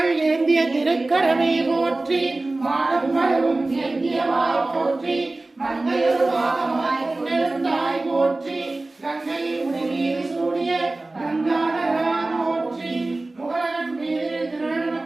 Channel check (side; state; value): left; quieter; 3.0 dB